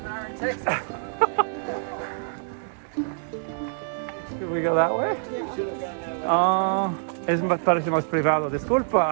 there are in Texas. Should we go that way? Yeah. Should have gone that way. Es parece más privado,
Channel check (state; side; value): silent; left; digital silence